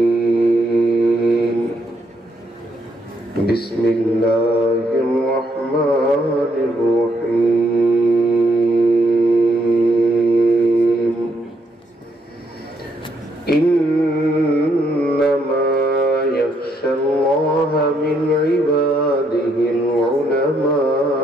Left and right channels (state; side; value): normal; both; correlation 0.74